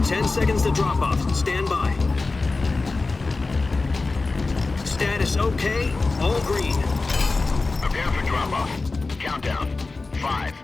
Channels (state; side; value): quieter; right; 3.6 dB